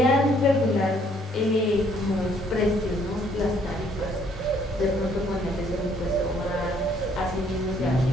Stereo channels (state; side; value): normal; both; correlation 0.65